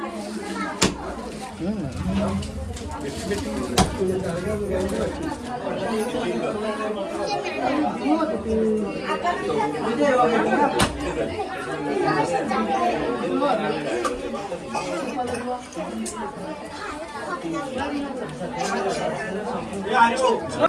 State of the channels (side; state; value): both; identical; correlation 1.00